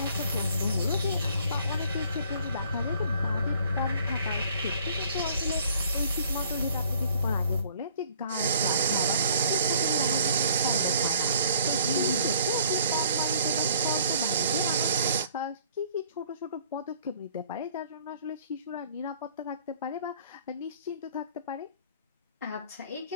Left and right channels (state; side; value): inverted; both; correlation -0.57